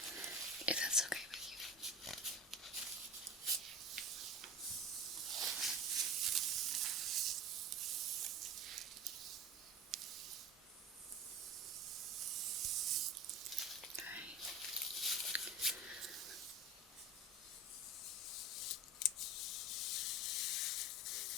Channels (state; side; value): normal; both; correlation 0.32